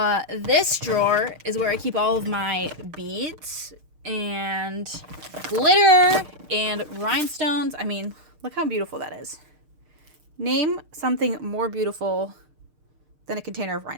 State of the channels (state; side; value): late; left; 6.5 ms